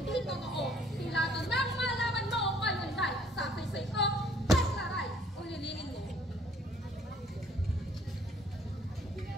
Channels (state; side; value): normal; both; correlation 0.60